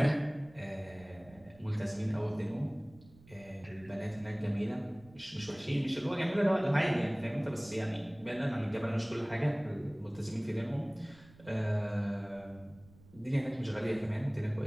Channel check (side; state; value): right; noise; rumble, 24 dB below the sound